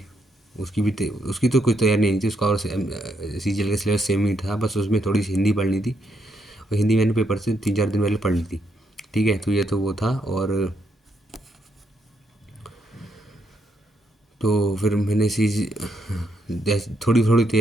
उसकी तो कोई तैयारी नहीं थी उसका, और सीजीएल का सिलेबस सेम ही था, बस उसमें थोड़ी सी हिंदी पढ़नी थी, और हिंदी मैंने पेपर से 3-4 दिन पहले पढ़ ली थी। ठीक है, तो ये तो वो था। और तो फिर मैंने थोड़ी थोड़ी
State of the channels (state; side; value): normal; both; correlation 0.77